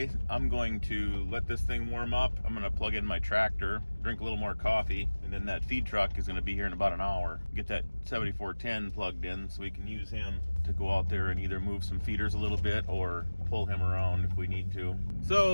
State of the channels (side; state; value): both; inverted; correlation -1.00